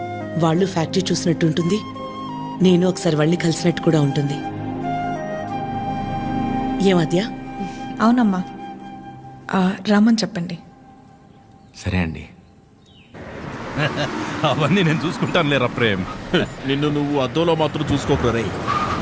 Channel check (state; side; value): identical; both; correlation 1.00